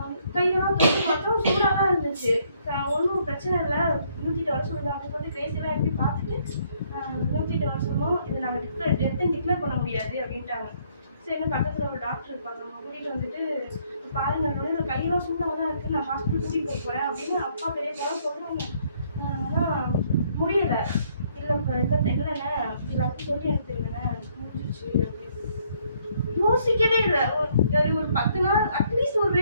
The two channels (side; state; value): both; inverted; correlation -0.68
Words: கையெல்லாம் தொட்டு பார்த்தோம், சூடாக தான் இருந்துச்சு. ஒன்றும் பிரச்சனை இல்லை, 108 வர சொல்லுங்க அப்படின்னு சொல்லிட்டு கிரேசியெல்லாம் எப்படி பார்த்துட்டு 108 வர சொன்னோம். இது நாங்கள் டெத்துன்னு பண்ண முடியாது அப்படின்ட்டாங்க. சரி பக்கத்தில் ஒரு டாக்டர் இருப்பாங்க, அவங்க கூட்டிகிட்டு வந்துட்டு பாருங்க என்னோட கையெல்லாம் சூடாக தான் இருக்குது, நான் ஹாஸ்பிட்டல் கூட்டிகிட்டு போகிறேன் அப்படின்னு அப்பா பெரிய போல சொல்கிறாங்க. ஆனால் முடியலை. இல்லைண்ணே எல்லாத்தையும் சொல்லி எடுத்துருங்கண்ணே முடிஞ்சிச்சு அப்படின்னு யோசிக்கவே இல்லை. ஒரு 10 நாள் அட்லீஸ்ட் ஒரு